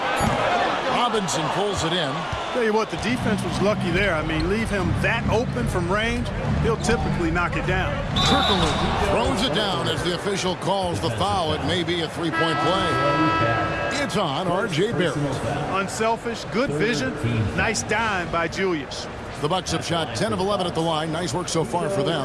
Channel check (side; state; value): both; identical; correlation 1.00